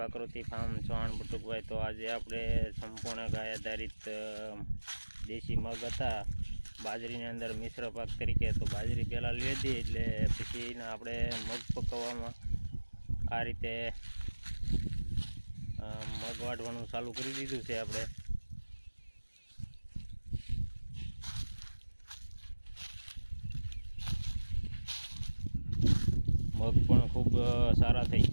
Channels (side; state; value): both; inverted; correlation -1.00